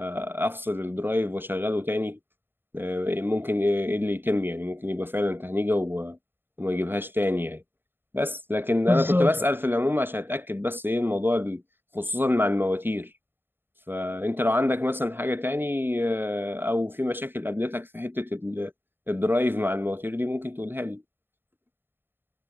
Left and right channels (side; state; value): left; late; 0.10 ms